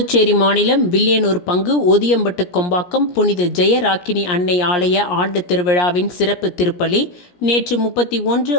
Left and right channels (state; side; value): late; right; 17 ms